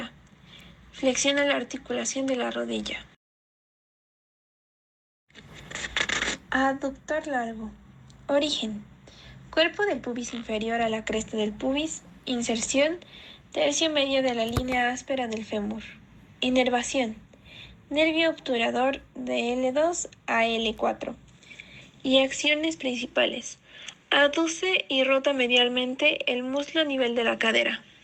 Flexiona la articulación de la rodilla. Aductor largo. Origen. Cuerpo del pubis inferior a la cresta del pubis. Inserción. Tercio medio de la línea áspera del fémur. Inervación. Nervio obturador de L2 a L4. Y acciones principales: aduce y rota medialmente el muslo a nivel de la cadera.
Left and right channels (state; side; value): identical; both; correlation 1.00